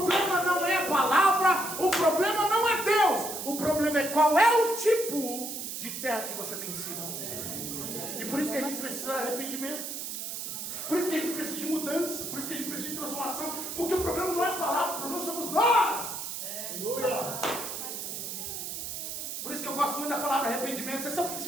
não é a palavra, o problema não é Deus, o problema é qual é o tipo de terra que você tem sido. E por isso que a gente precisa de arrependimento. Por isso que a gente precisa de mudança, por isso que a gente precisa de transformação, porque o problema não é a palavra, o problema somos nós. Por isso que eu gosto muito da palavra arrependimento. Você sabe o que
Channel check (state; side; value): noise; right; hiss, 6 dB below the sound